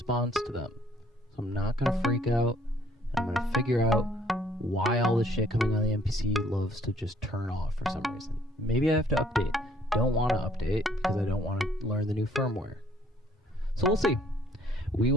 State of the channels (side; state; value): both; normal; correlation 0.62